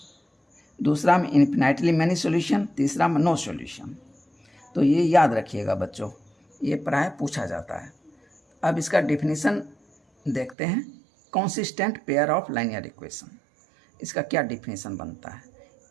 दूसरा में इन्फिनाइटली मैनी सॉल्यूशन, तीसरा में नो सॉल्यूशन। तो ये याद रखिएगा बच्चों, ये प्राय पूछा जाता है। अब इसका डेफिनेशन देखते हैं, consistent pair of linear equation. इसका क्या डेफिनेशन बनता है,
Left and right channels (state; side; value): drops out; left; at 10.6 s